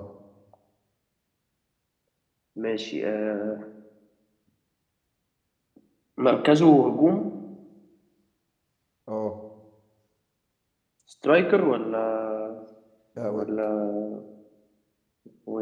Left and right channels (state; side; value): identical; both; correlation 1.00